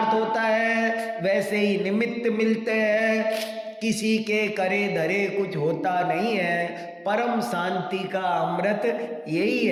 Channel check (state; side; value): identical; both; correlation 1.00